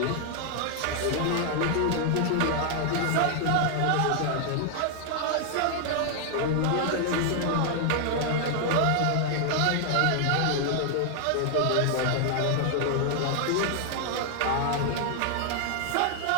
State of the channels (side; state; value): both; different; correlation 0.00